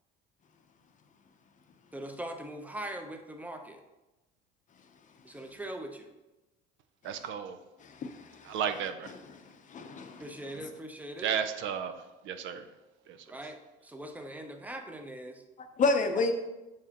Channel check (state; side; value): normal; both; correlation 0.27